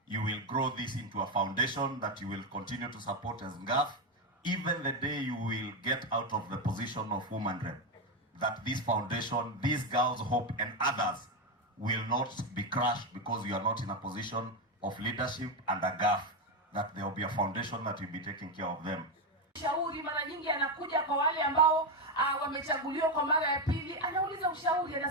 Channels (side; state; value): both; normal; correlation 0.08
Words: you will grow this into a foundation that you will continue to support as NGAF, even the day you will get out of the position of woman rep. That this foundation, these girls' hope and others will not be crushed because you are not in a position of leadership and a GAF, that there will be a foundation that will be taking care of them. Ushauri mara nyingi anakuja kwa wale ambao wamechaguliwa kwa mara ya pili, anauliza ushauri,